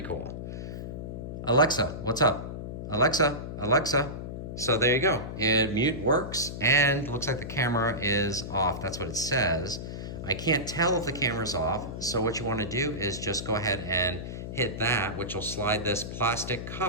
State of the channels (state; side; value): noise; left; hum, 7 dB below the sound